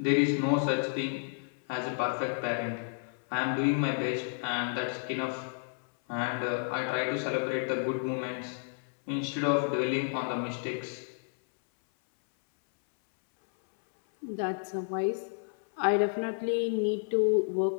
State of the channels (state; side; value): silent; right; 57 dB below the other